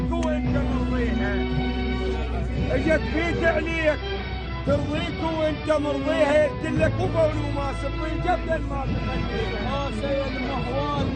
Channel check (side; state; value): both; identical; correlation 1.00